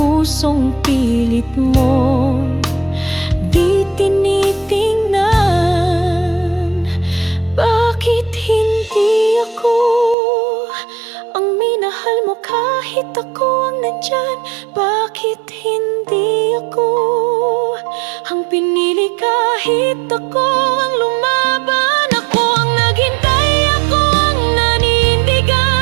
pilit mo di tinitingnan? Bakit hindi ako ang minahal mo kahit ako ang nandyan? Bakit hindi ako ang pinili kahit ako ang lumaban? Ako ang naghintay, ako ang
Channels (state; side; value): drops out; left; at 10.2 s